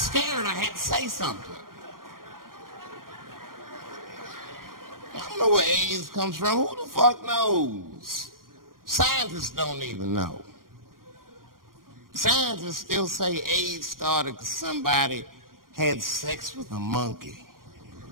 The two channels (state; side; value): late; left; 0.91 ms